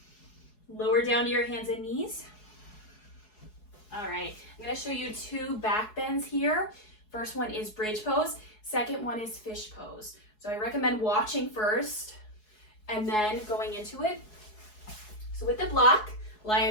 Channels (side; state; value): right; late; 4.7 ms